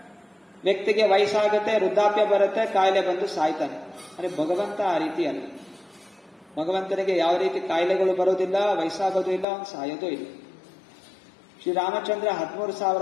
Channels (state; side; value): drops out; right; at 9.5 s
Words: ವ್ಯಕ್ತಿಗೆ ವಯಸ್ಸಾಗುತ್ತೆ, ವೃದ್ಧಾಪ್ಯ ಬರುತ್ತೆ, ಕಾಯಿಲೆ ಬಂದು ಸಾಯ್ತಾನೆ. ಅರೆ ಭಗವಂತ ಆ ರೀತಿ ಅಲ್ಲ. ಭಗವಂತನಿಗೆ ಯಾವ ರೀತಿ ಕಾಯಿಲೆಗಳು ಬರೋದಿಲ್ಲ, ವಯಸ್ಸಾಗೋದು ಇಲ್ಲ, ಅವನು ಸಾಯೋದು ಇಲ್ಲ. ಶ್ರೀರಾಮಚಂದ್ರ